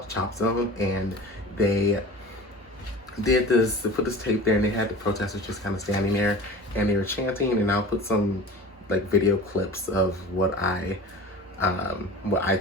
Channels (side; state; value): both; normal; correlation 0.37